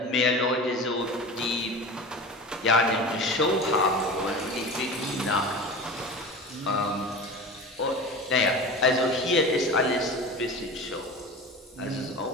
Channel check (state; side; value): normal; both; correlation 0.33